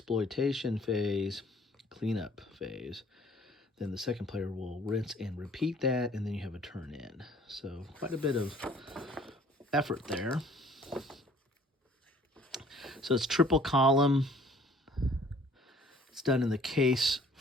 phase, cleanup phase. Then the second player will rinse and repeat that, and then you have a turn in. So quite a bit of effort there. So it's triple column. It's done in the case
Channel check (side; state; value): both; normal; correlation 0.56